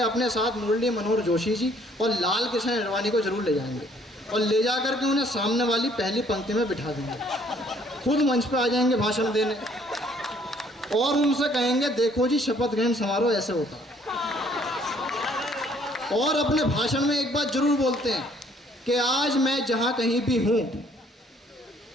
अपने साथ मुरली मनोहर जोशी जी और लाल कृष्ण अडवाणी को जरूर ले जाएंगे, और ले जा करके उन्हें सामने वाली पहली पंक्ति में बिठा देंगे। खुद मंच पे आ जाएंगे भाषण देने, और उनसे कहेंगे देखो जी शपथ ग्रहण समारोह ऐसे होता है। और अपने भाषण में एक बात जरूर बोलते हैं कि आज मैं जहां कहीं भी हूं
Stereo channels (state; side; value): normal; both; correlation 0.61